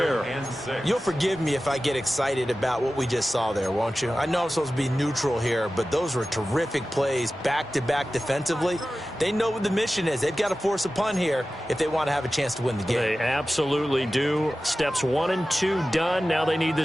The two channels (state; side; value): normal; both; correlation 0.95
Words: You'll forgive me if I get excited about what we just saw there, won't you? I know I'm supposed to be neutral here, but those were terrific plays back-to-back defensively. They know what the mission is. They've got to force a punt here if they want to have a chance to win the game. They absolutely do. Steps 1 and 2 done. Now they need